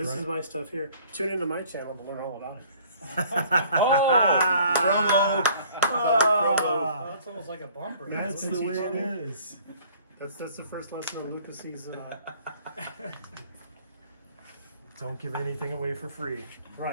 is my stuff here. Tune into my channel to learn all about it. Ah, That's almost like a bumper. that's the way it is. That's the first lesson on Luka Cee's. Don't give anything away for free.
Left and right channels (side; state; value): both; inverted; correlation -0.55